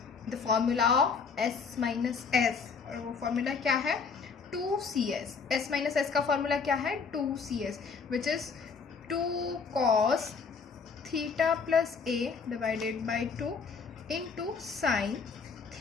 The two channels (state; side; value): quieter; right; 5.4 dB